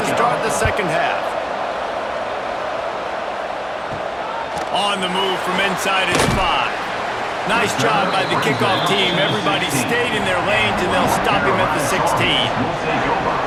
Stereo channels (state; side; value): identical; both; correlation 1.00